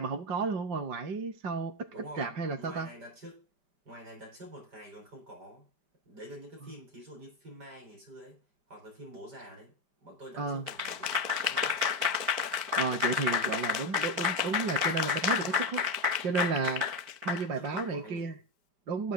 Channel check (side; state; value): left; late; 5.1 ms